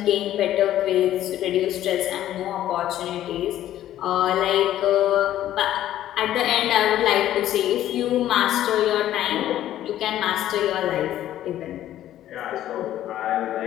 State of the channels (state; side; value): quieter; right; 12.6 dB